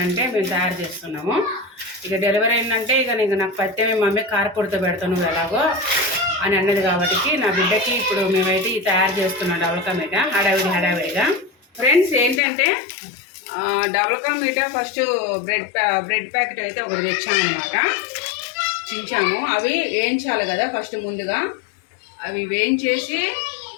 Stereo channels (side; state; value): right; drops out; at 12.4 s